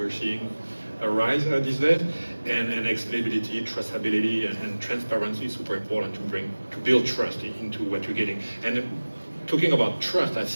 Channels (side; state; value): both; inverted; correlation -1.00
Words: seeing arise these days, and explainability, traceability, and transparency is super important to build trust into what you're getting. And talking about trust, I